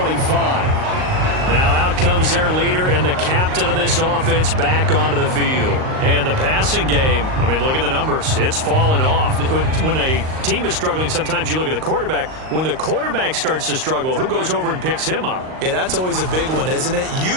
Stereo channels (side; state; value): left; late; 38 ms